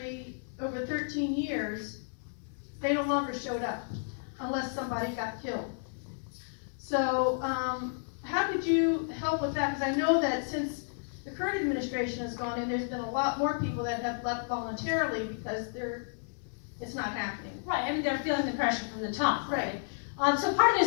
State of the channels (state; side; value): silent; right; digital silence